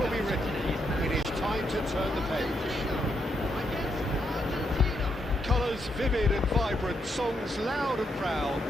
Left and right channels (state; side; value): normal; both; correlation 0.79